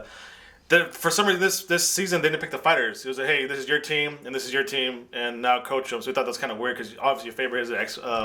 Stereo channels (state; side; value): identical; both; correlation 1.00